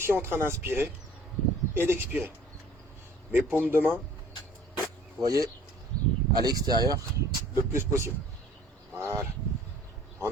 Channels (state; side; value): normal; both; correlation 0.52